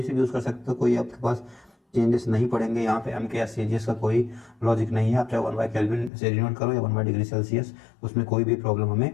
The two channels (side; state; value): right; drops out; at 6.1 s